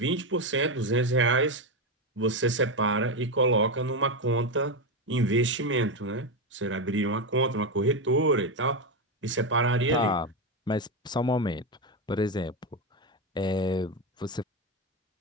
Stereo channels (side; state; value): both; normal; correlation 0.11